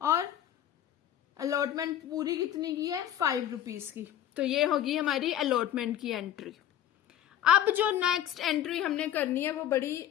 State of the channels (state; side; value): quieter; right; 11.2 dB